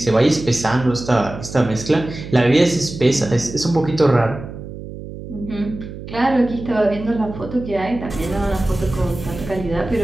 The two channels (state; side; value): noise; right; hum, 11 dB below the sound